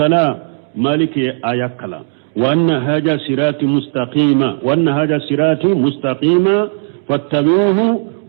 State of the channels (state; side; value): silent; left; digital silence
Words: مالك آيكلا وأن هذا صراطي مستقيما فاتبعوه